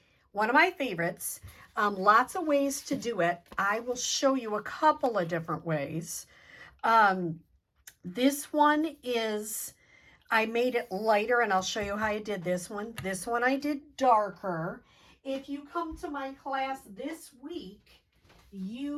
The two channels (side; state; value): both; identical; correlation 1.00